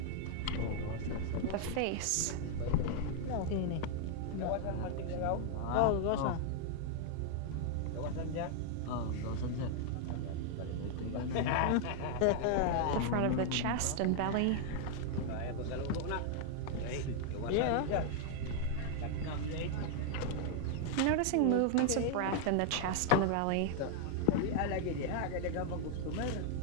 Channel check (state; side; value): different; both; correlation 0.00